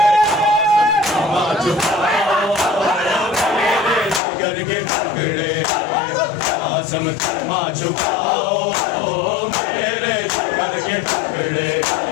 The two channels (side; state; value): right; drops out; at 4.2 s